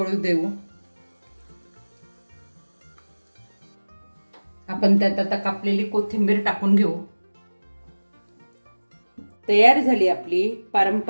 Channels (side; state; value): both; inverted; correlation -1.00